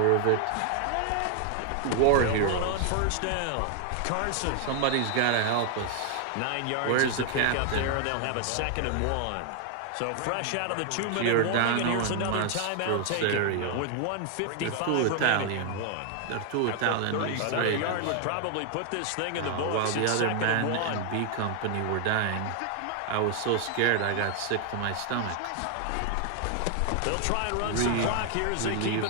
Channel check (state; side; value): different; both; correlation 0.00